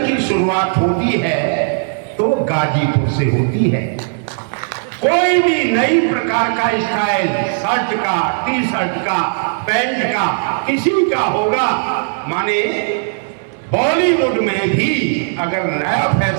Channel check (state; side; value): silent; left; digital silence